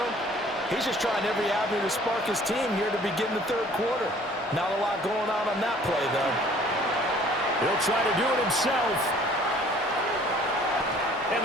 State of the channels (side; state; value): both; normal; correlation 0.54